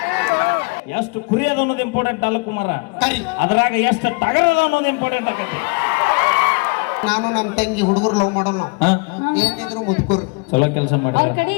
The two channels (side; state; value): right; quieter; 30.1 dB